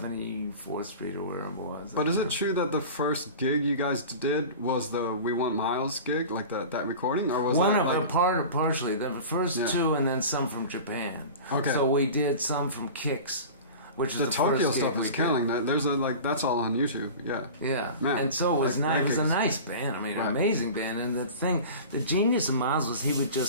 Street or where it was. But is it true that the first gig you guys did was the We Want Miles gig, that recording, or was partially the first two, and then some from Japan. Okay. So we did some from Kicks. Which is the Tokyo stuff is killing. There's that's all on YouTube. Yeah. Yeah. Man, and so it was nice. It was a nice band. I mean, an amazing band. And the genius of Miles was he would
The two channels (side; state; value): both; inverted; correlation -0.35